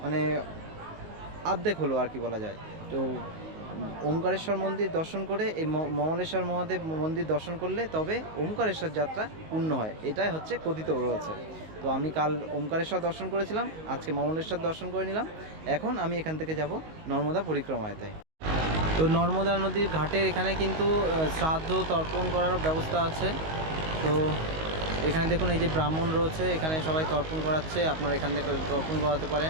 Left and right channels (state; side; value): late; left; 19 ms